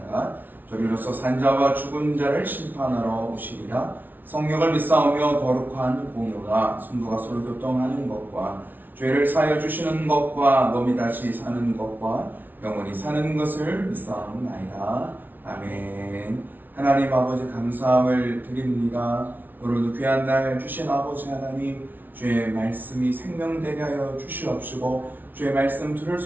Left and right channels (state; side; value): late; left; 0.086 ms